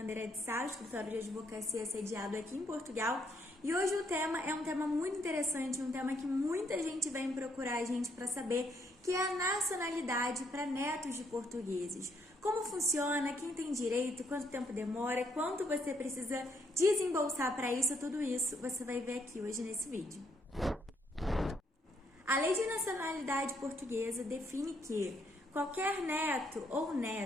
de Sá, escritório de advocacia sediado aqui em Portugal. E hoje o tema é um tema muito interessante, um tema que muita gente vem procurar a gente para saber, que é a nacionalidade para netos de portugueses. Como funciona, quem tem direito, quanto tempo demora, quanto você precisa desembolsar para isso, tudo isso você vai ver aqui hoje nesse vídeo. A Lei de Nacionalidade Portuguesa define que qualquer neto ou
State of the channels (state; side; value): normal; both; correlation 0.72